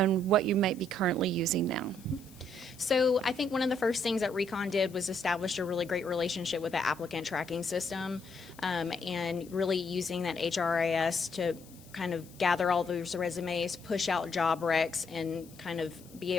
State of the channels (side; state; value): left; noise; hiss, 23 dB below the sound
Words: what you might be currently using now? So I think one of the first things that Recon did was establish a really great relationship with the applicant tracking system, and really using that HRIS to kind of gather all those resumes, push out job recs, and kind of be